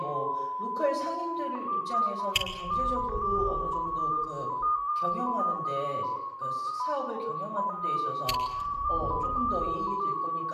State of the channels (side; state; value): both; identical; correlation 1.00